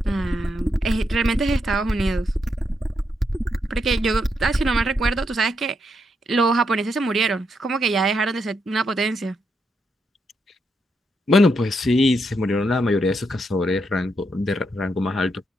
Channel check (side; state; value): both; normal; correlation 0.80